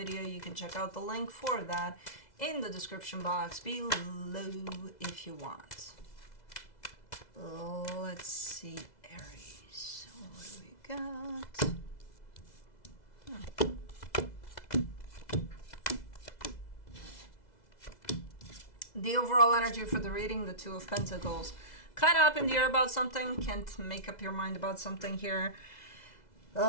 you can check out the link for that in the description box below if you want. Let's see, Aries. What do we got? The overall energy for the reading, the Two of Pentacles. Kind of up in the air about something. Can't make up your mind about something here.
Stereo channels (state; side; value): late; right; 2.0 ms